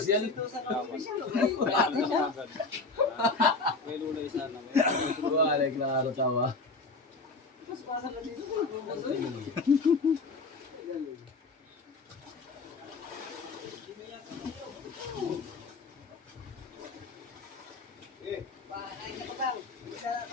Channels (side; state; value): right; quieter; 3.7 dB